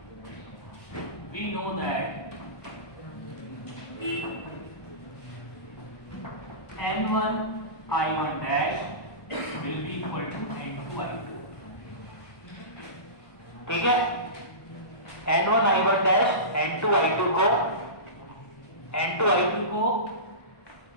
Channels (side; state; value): right; late; 1.2 ms